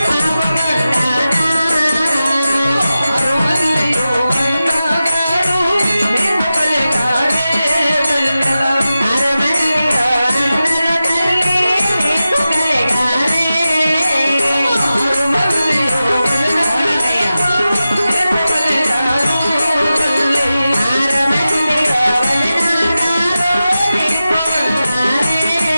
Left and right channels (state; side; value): inverted; both; correlation -0.94